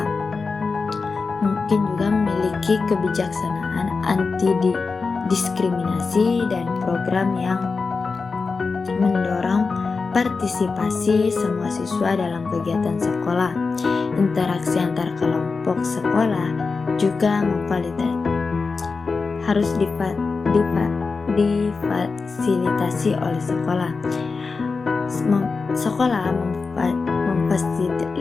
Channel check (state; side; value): quieter; right; 4.5 dB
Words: Mungkin juga memiliki kebijaksanaan anti-diskriminasi dan program yang mendorong partisipasi semua siswa dalam kegiatan sekolah. Interaksi antar kelompok sekolah juga harus difasilitasi oleh sekolah. Sekolah